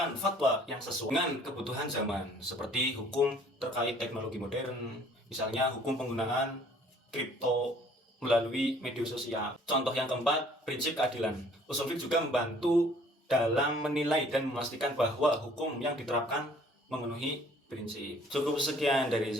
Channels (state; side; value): normal; both; correlation 0.56